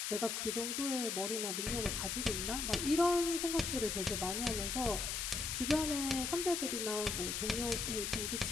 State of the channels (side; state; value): left; noise; hiss, 1 dB below the sound